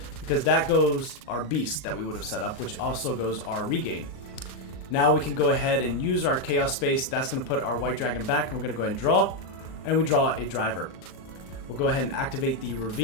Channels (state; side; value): late; right; 38 ms